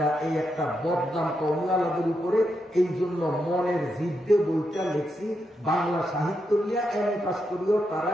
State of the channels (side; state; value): both; normal; correlation 0.83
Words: না, এই একটা বদনাম কওমিওয়ালাদের উপরে। এই জন্য মনের জিদ্দে বইটা লিখছি, বাংলা সাহিত্য নিয়ে MA পাস করিও তারা